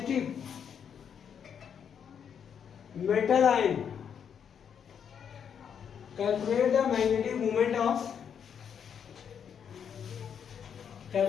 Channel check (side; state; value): right; quieter; 7.8 dB